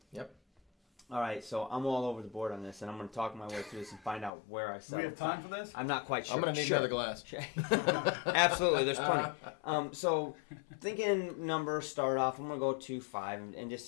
Yep. All right, so I'm all over the board on this, and I'm going to talk my way through this and find out where I Do we settle. have time for this? I'm not quite sure. I'm gonna need Sure. another glass. Absolutely, there's plenty. So, thinking numbers, start off. I'm gonna go 2-5, and just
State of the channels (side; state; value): right; drops out; at 4.3 s